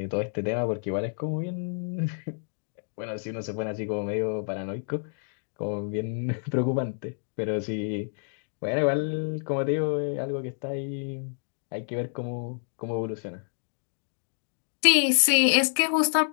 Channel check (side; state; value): right; silent; digital silence